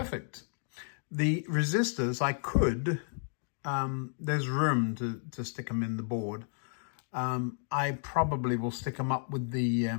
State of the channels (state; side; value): silent; right; 56 dB below the other